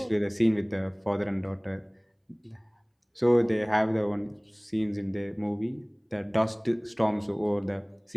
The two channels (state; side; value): identical; both; correlation 1.00